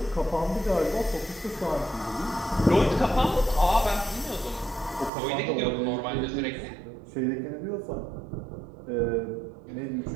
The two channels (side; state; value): left; drops out; at 5.1 s